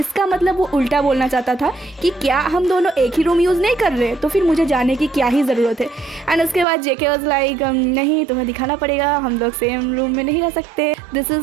मतलब वो उल्टा बोलना चाहता था कि क्या हम दोनों एक ही रूम यूज़ नहीं कर रहे, तो फिर मुझे जाने की क्या ही ज़रूरत है। एंड उसके बाद जेके वाज लाइक नहीं तुम्हें दिखाना पड़ेगा, हम लोग सेम रूम में नहीं रह सकते, this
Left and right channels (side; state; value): left; drops out; at 6.7 s